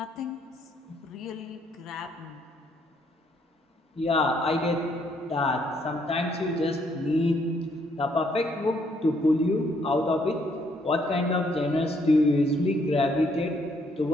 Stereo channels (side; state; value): both; normal; correlation 0.70